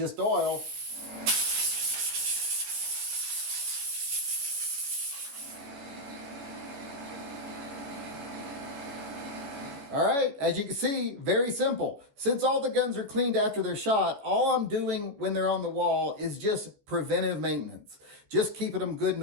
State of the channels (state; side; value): late; left; 14 ms